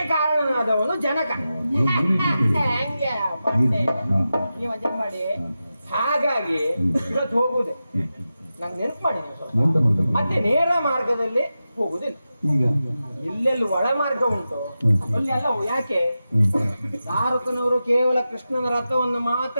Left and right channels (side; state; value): both; inverted; correlation -0.92